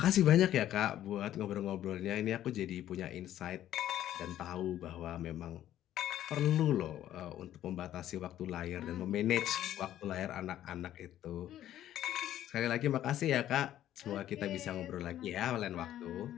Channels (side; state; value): right; quieter; 12.3 dB